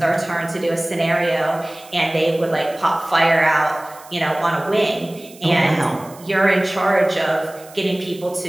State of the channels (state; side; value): noise; right; hiss, 22 dB below the sound